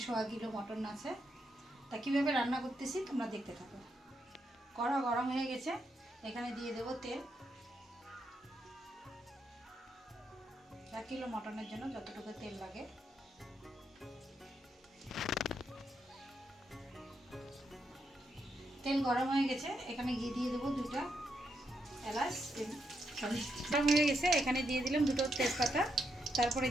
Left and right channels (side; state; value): both; normal; correlation 0.81